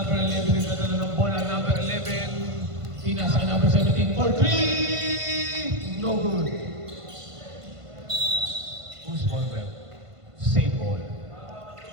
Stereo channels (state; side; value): late; left; 1.5 ms